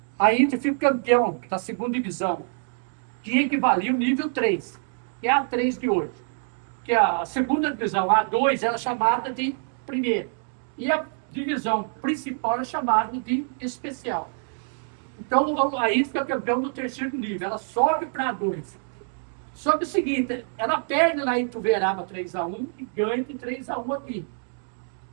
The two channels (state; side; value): silent; left; 56 dB below the other